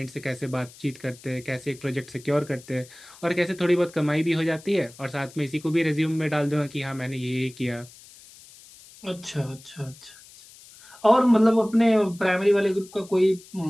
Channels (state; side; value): noise; left; hiss, 22 dB below the sound